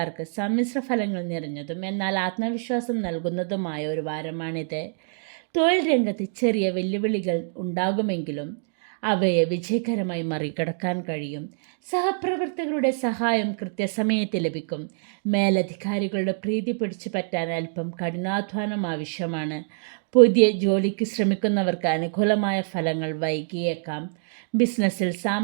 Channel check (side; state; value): left; silent; digital silence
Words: സമ്മിശ്ര ഫലങ്ങൾ നിറഞ്ഞതും എന്നാൽ ആത്മവിശ്വാസം നൽകുന്നതുമായ ഒരു വാരമാണിത്. തൊഴിൽ രംഗത്ത് ചെറിയ വെല്ലുവിളികൾ ഉണ്ടാകുമെങ്കിലും അവയെ വിജയകരമായി മറികടക്കാൻ കഴിയും. സഹപ്രവർത്തകരുടെ സഹായം കൃത്യസമയത്ത് ലഭിക്കും. മേലധികാരികളുടെ പ്രീതി പിടിച്ചു പറ്റാൻ അല്പം കഠിനാധ്വാനം ആവശ്യമാണ്. പുതിയ ജോലിക്ക് ശ്രമിക്കുന്നവർക്ക് അനുകൂലമായ ഫലങ്ങൾ വൈകിയേക്കാം. ബിസിനസ്സിൽ